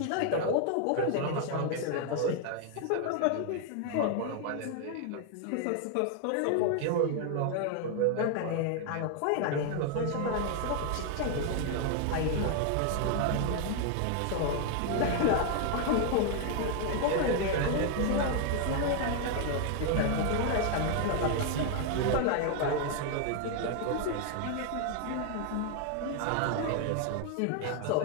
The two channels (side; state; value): both; different; correlation 0.00